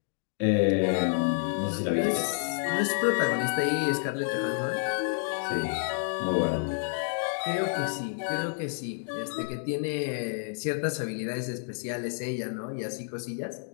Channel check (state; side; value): silent; right; digital silence